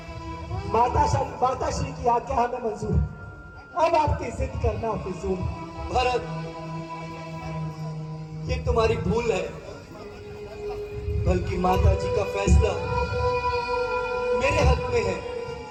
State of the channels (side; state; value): both; identical; correlation 1.00